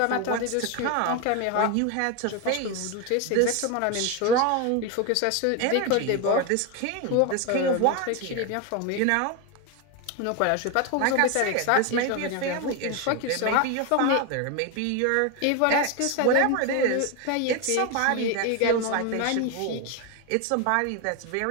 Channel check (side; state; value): both; different; correlation 0.02